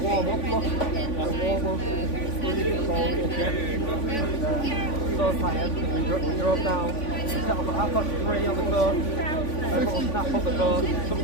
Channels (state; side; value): late; right; 3.5 ms